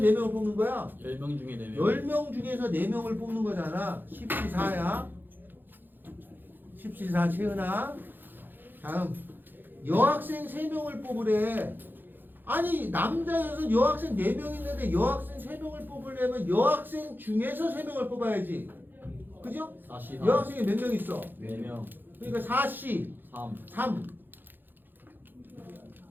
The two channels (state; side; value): late; left; 0.093 ms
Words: 뽑는 거야? 10명 중에 4명. 10명 중에서 4명을 뽑는 거잖아. 14야. 14 채은아. 다음 여학생 3명을 뽑으래. 아니 남자여서 여학생 4명 있는데 여학생 3명을 뽑으려면 여학생 중에서 3명을 뽑아야지. 그죠? 44. 여학생이 몇 명 있어? 4명. 그러니까 4C 3. 3.